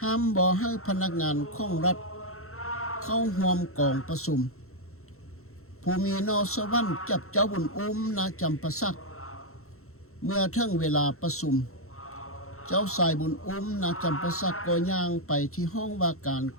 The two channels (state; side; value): late; right; 0.63 ms